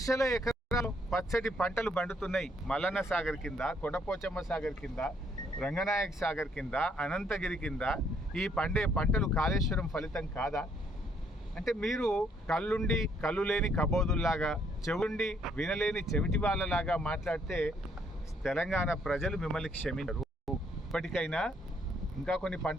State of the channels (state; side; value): normal; both; correlation 0.68